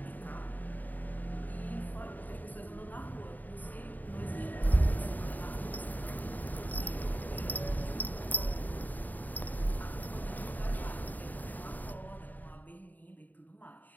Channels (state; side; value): late; right; 0.084 ms